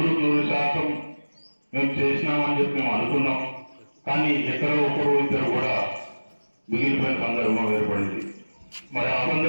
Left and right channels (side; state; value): both; inverted; correlation -1.00